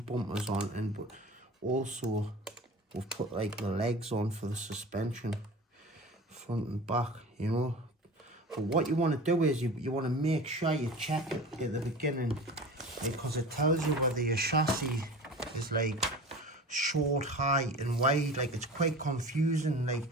on, and but also we've put like the legs on for the suspension, front and back, you know. But what you want to do is you want to make sure you check it at the beginning, because it tells you whether your chassis is like short, high and wide. Like, it's quite confusing. Like,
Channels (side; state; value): both; normal; correlation 0.36